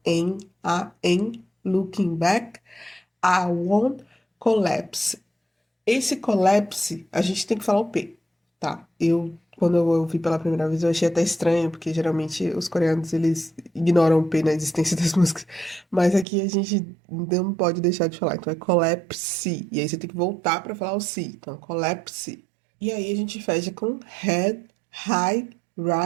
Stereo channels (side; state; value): left; drops out; at 16.2 s